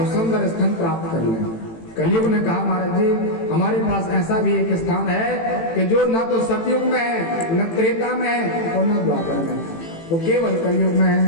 सुंदर स्थान प्राप्त कर लें। कलयुग ने कहा, महाराज जी हमारे पास ऐसा भी एक स्थान है कि जो न तो सतयुग में है, न त्रेता में है और न द्वापर में है, वो केवल कलयुग में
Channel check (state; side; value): late; right; 18 ms